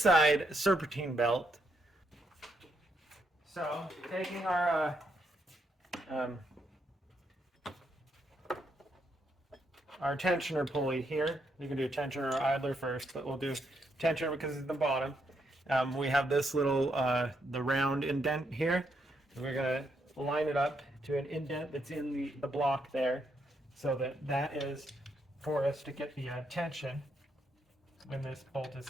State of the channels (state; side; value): normal; both; correlation 0.78